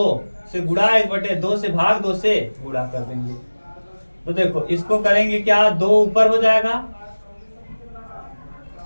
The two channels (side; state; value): both; inverted; correlation -1.00